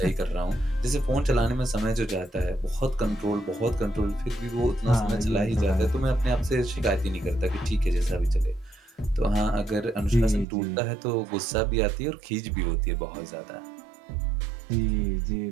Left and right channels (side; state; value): left; drops out; at 10.5 s